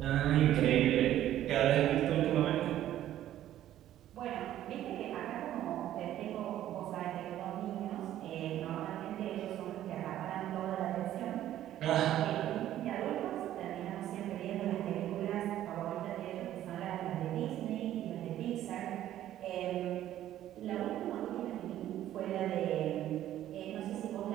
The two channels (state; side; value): quieter; left; 12.5 dB